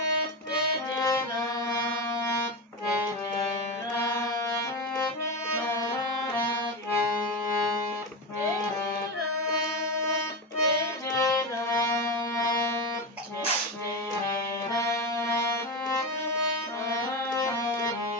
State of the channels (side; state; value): both; normal; correlation 0.17